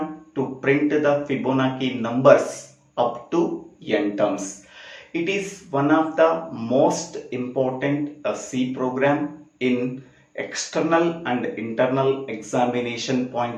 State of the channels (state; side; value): identical; both; correlation 1.00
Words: to print the Fibonacci numbers up to n terms. It is one of the most important C program in external and internal examination